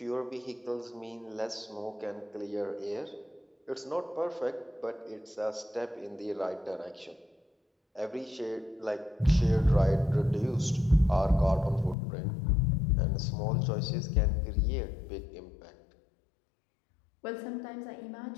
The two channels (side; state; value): right; drops out; at 12.0 s